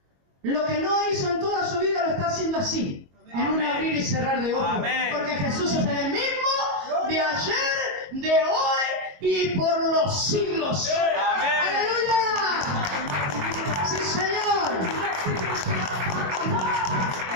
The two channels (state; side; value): late; left; 22 ms